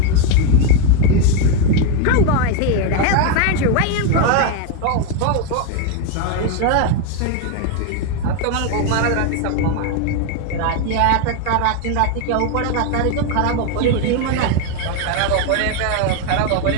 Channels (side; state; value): both; different; correlation 0.02